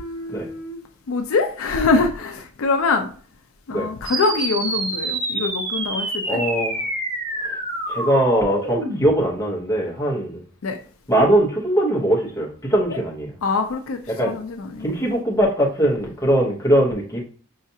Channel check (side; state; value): both; normal; correlation 0.44